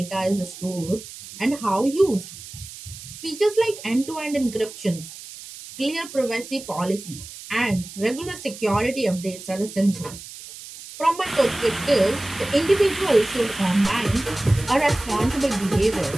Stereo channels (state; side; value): noise; right; hiss, 14 dB below the sound